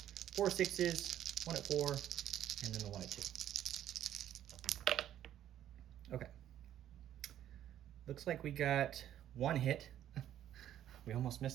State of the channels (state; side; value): quieter; left; 11.4 dB